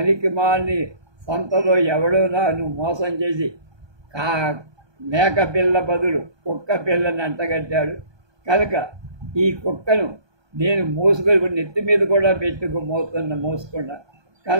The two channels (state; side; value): late; left; 1.2 ms